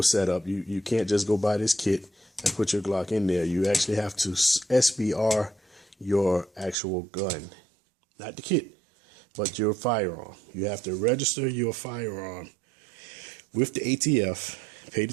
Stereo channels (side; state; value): left; drops out; at 6.8 s